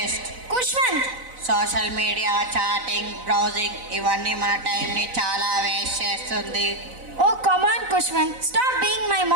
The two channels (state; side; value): late; left; 4.0 ms